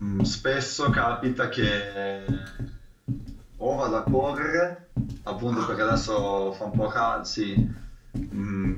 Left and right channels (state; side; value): identical; both; correlation 1.00